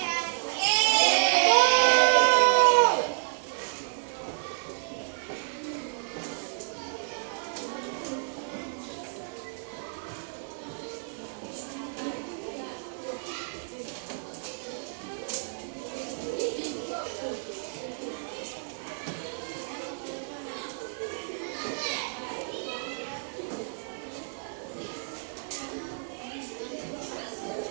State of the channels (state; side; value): silent; left; digital silence